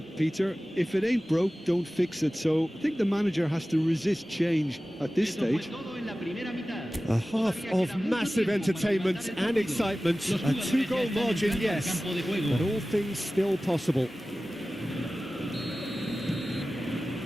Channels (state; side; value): normal; both; correlation 0.96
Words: Peter. If it ain't broke, don't fix it. So I think the manager has to resist change at this stage. A half of massive entertainment and excitement. A 2-goal margin, yes, but all things still possible.